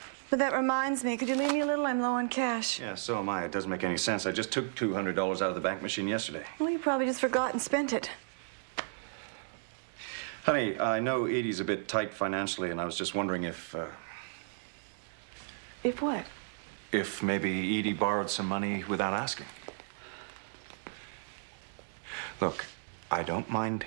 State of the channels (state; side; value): silent; left; digital silence